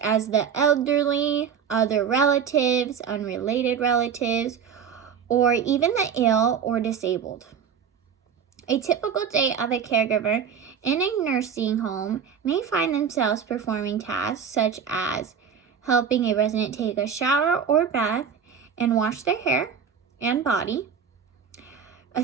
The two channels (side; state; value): left; quieter; 7.2 dB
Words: the elderly, other relatives, unrelated relatives, or even the ill or disabled. A typical day of a caregiver in a nursing home may find themselves performing tasks such as helping a resident take a shower or bath and wash their hair and body,